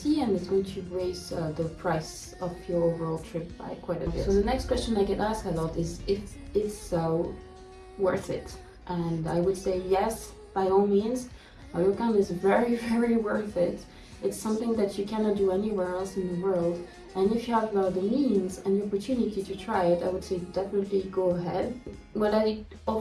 and it's going to raise the price of your overall trip by quite a bit. So the next question I get asked a lot is if it's worth it. And I would say yes, by all means. A ryokan is very, very worth it. It's something that you cannot do anywhere else in the world. And if you have the means and the opportunity to try it, I would say definitely go ahead. What I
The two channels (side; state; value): both; identical; correlation 1.00